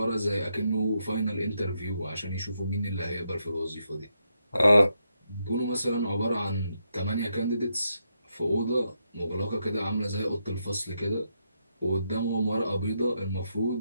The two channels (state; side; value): inverted; both; correlation -0.81